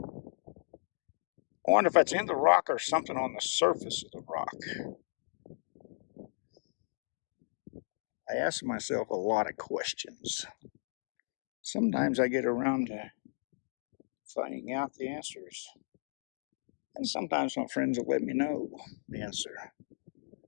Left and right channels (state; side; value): silent; right; digital silence